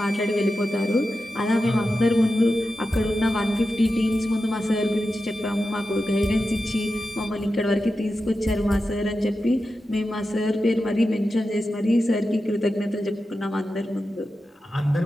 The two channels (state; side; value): normal; both; correlation 0.91